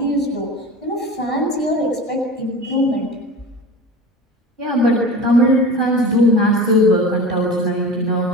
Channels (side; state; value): both; normal; correlation 0.34